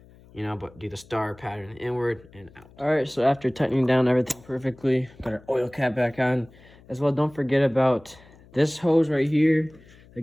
you know, but do the star pattern inward and out. All right, so after tightening down everything perfectly, got our oil cap back on as well. Don't forget about this hose right here that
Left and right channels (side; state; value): left; noise; hum, 25 dB below the sound